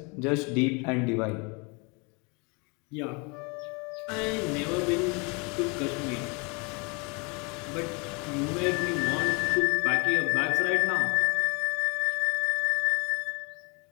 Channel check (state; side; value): quieter; right; 30.8 dB